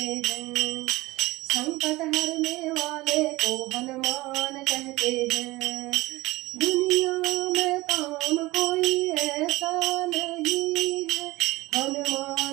हैं, संकट हरने वाले को हनुमान कहते हैं। दुनिया में काम कोई ऐसा नहीं है,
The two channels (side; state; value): left; quieter; 19.7 dB